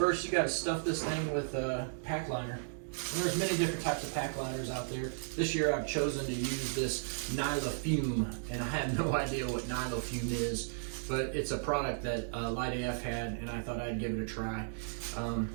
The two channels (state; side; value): silent; left; digital silence